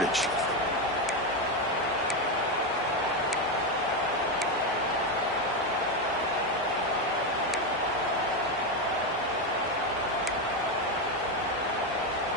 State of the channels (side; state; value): both; normal; correlation 0.10